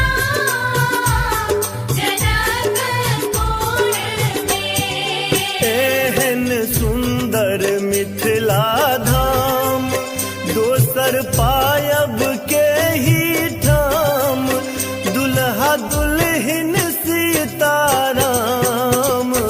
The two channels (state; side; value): identical; both; correlation 1.00